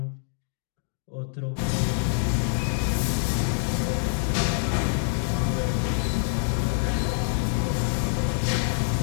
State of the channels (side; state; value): right; silent; digital silence